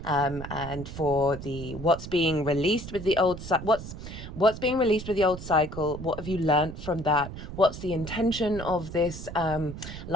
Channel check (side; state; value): right; noise; rumble, 10 dB below the sound